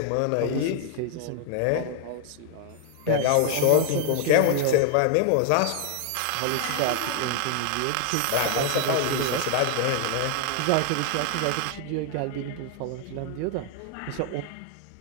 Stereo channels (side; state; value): both; different; correlation 0.00